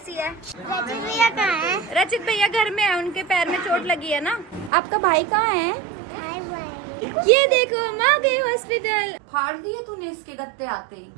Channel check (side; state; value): left; drops out; at 4.7 s